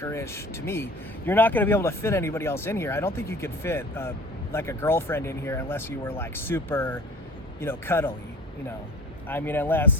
to me. You're not gonna be able to fit anybody else in here. I don't think you could fit like a girlfriend in here unless you were like super, you know, cuddly, you know. I mean,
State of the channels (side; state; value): both; normal; correlation 0.43